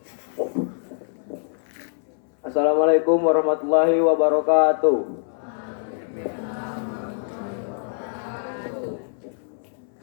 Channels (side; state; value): right; silent; 60 dB below the other